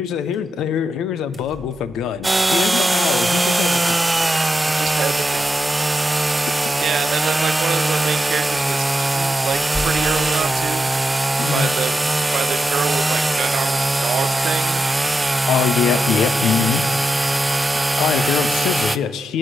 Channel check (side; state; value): both; normal; correlation 0.86